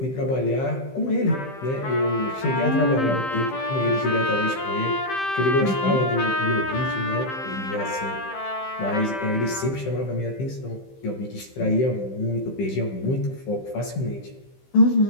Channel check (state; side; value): late; right; 15 ms